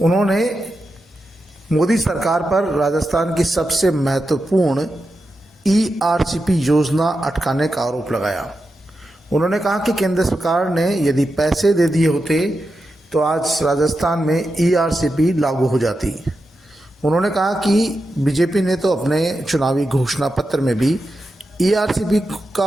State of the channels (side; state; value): both; normal; correlation 0.89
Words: मोदी सरकार पर राजस्थान की सबसे महत्वपूर्ण ईआरसीपी योजना अटकाने का आरोप लगाया। उन्होंने कहा कि केंद्र सरकार ने यदि पैसे दे दिए होते तो आज राजस्थान में ईआरसीपी लागू हो जाती। उन्होंने कहा कि बीजेपी ने तो अपने चुनावी घोषणा पत्र में भी ईआरसीपी